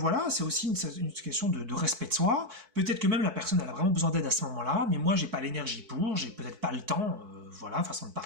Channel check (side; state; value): left; late; 4.6 ms